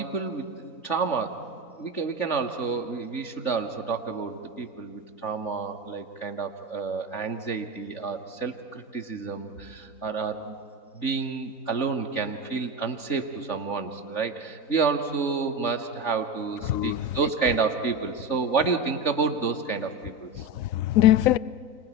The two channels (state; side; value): late; right; 3.4 ms